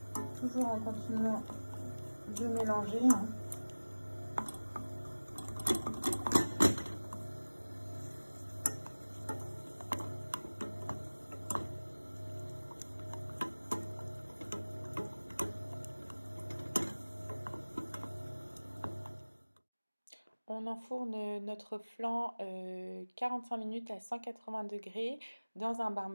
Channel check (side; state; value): both; inverted; correlation -1.00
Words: toujours en continuant de mélanger. On enfourne notre flan 45 minutes à 180 degrés dans un